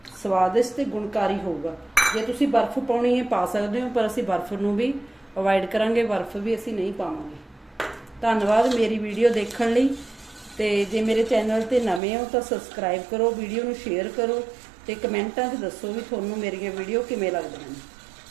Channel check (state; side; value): drops out; left; at 12.0 s